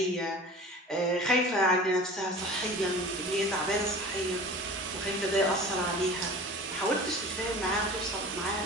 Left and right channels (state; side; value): normal; both; correlation 0.39